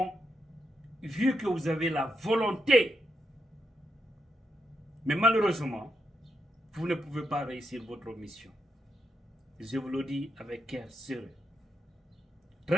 vu que vous avez la volonté, mais malheureusement, vous ne pouvez pas réussir votre mission. Je vous le dis avec cœur serré,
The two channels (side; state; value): both; normal; correlation 0.83